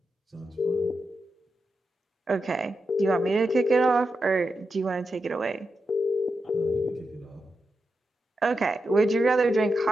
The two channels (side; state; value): both; normal; correlation 0.88